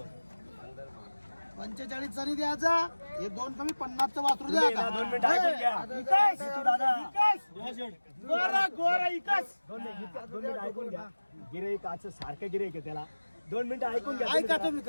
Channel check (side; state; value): both; inverted; correlation -1.00